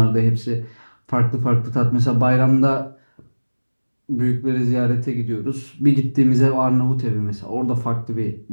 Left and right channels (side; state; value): both; inverted; correlation -1.00